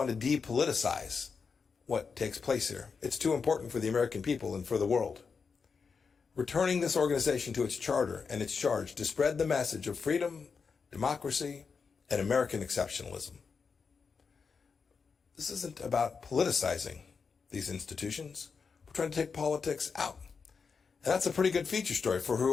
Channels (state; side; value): quieter; right; 5.4 dB